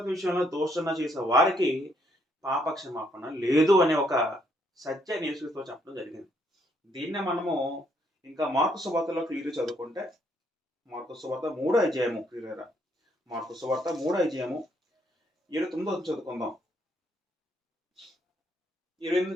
విషయంలో దోషణ చేసే వారికి పాప క్షమాపణ లేదు అనే ఒక సత్యాన్ని యేసుక్రీస్తు చెప్పడం జరిగింది. దీన్నే మనము ఇంకా మార్కు సువార్తలో క్లియర్ చదువుకుంటే, మార్కు సువార్త 3వ అధ్యాయము క్లియర్ మార్కు సువార్త 3వ అధ్యాయము 29 చదువుకుందాం.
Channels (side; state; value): both; normal; correlation 0.71